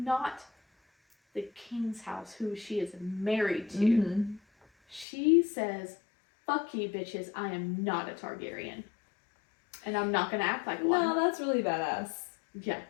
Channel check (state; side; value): drops out; right; at 5.1 s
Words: the king's house, who she is married to. Mm-hmm. She says, "Fuck you, bitches. I am not a Targaryen. And I'm not gonna act like one." No, that's really badass. Yeah.